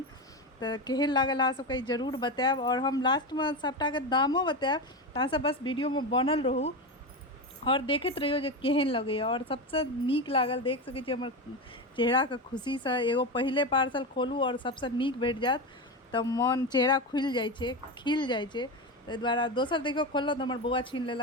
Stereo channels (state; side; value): normal; both; correlation 0.18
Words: तो केहन लागल अहाँ सबके जरूर बताएब। और हम लास्ट में सबटा के दामो बताएब, तऽ अहाँ सब बस वीडियो में बनल रहू और देखैत रहियो जे केहन लगैया। और सबसे नीक लागल देख सकै छी हमर चेहरा के खुशी से। एगो पहिले पार्सल खोलू और सबसे नीक भेट जायत तऽ मन चेहरा खुलि जाइ छै, खिल जाइ छै। ताहि दुआरे दोसर देखियो खोललहुँ तऽ हमर बौआ छीन